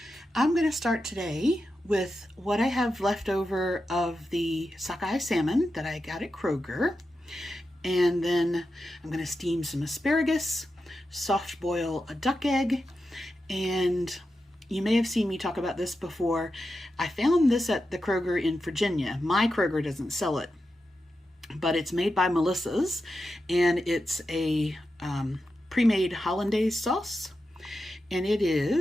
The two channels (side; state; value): both; normal; correlation 0.89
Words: I'm going to start today with what I have left over of the sockeye salmon that I got at Kroger. And then I'm going to steam some asparagus, soft boil a duck egg, and you may have seen me talk about this before. I found this at the Kroger in Virginia. My Kroger doesn't sell it, but it's made by Melissa's, and it's a pre-made Hollandaise sauce. And it